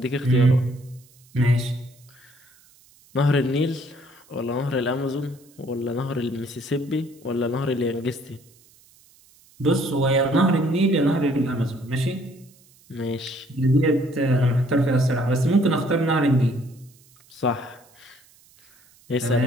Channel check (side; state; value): right; noise; hiss, 29 dB below the sound